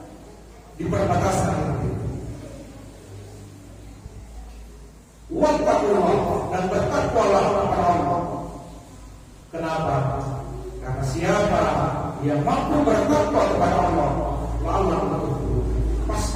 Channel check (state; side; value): identical; both; correlation 1.00